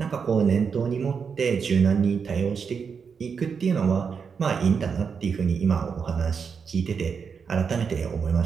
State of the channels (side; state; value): left; quieter; 6.1 dB